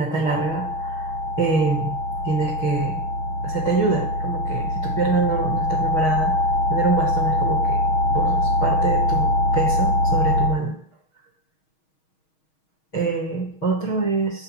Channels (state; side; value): late; right; 6.3 ms